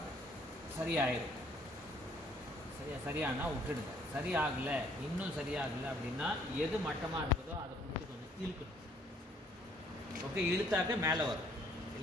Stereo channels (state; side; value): normal; both; correlation 0.62